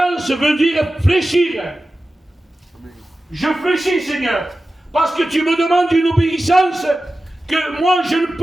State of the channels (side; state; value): both; normal; correlation 0.94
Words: veut dire fléchir. Je fléchis, Seigneur. Parce que tu me demandes une obéissance que moi je ne